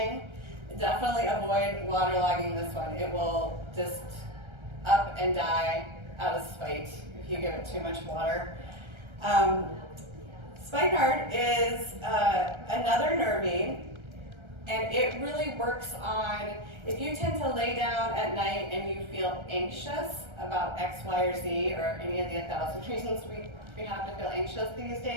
Definitely avoid waterlogging this one. It will just up and die out of spite if you give it too much water. Spikenard is another nervine, and it really works on, if you tend to lay down at night and you feel anxious about X, Y, or Z, or any of the 1,000 reasons we have to feel anxious these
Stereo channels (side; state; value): left; late; 1.3 ms